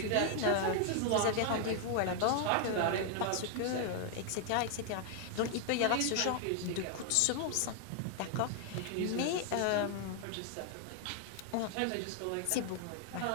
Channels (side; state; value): both; different; correlation 0.00